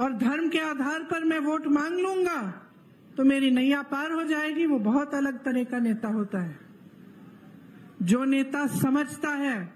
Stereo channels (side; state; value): both; identical; correlation 1.00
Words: धर्म के आधार पर मैं वोट मांग लूंगा तो मेरी नैया पार हो जाएगी। वो बहुत अलग तरह का नेता होता है। जो नेता समझता है